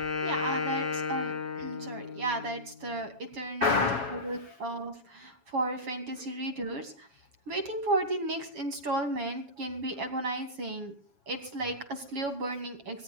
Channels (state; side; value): late; left; 7.2 ms